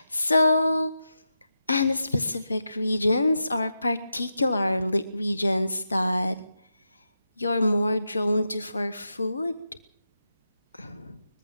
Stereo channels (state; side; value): inverted; both; correlation -0.88